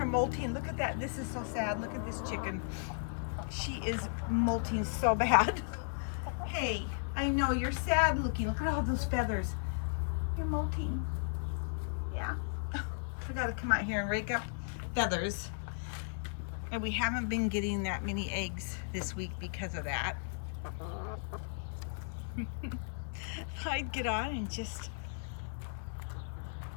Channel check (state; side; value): silent; right; 54 dB below the other